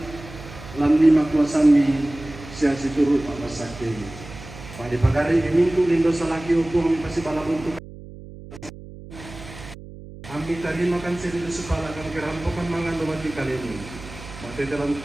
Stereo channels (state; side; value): noise; right; hum, 15 dB below the sound